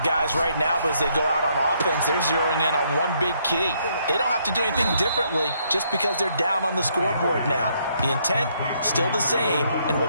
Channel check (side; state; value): both; inverted; correlation -0.71